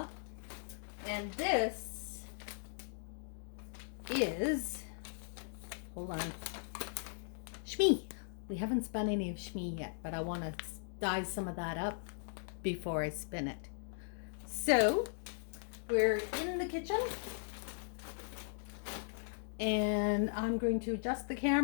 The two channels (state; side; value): silent; right; digital silence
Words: and this is, hold on, Shmee. We haven't spun any of Shmee yet, but I want to dye some of that up before I spin it. So we're in the kitchen, and I'm going to adjust the